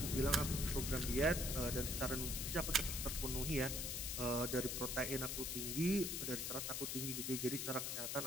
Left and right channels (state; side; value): noise; left; hiss, 2 dB below the sound